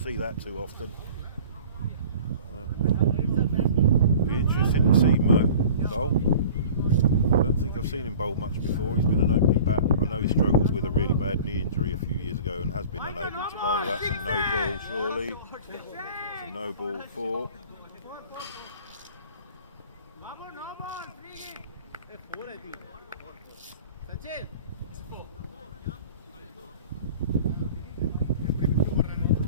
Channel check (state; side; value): inverted; both; correlation -0.44